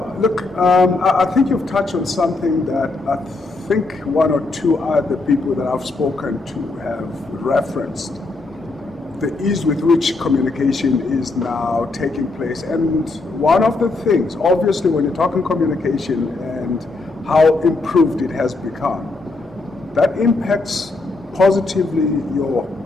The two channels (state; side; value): quieter; right; 3.4 dB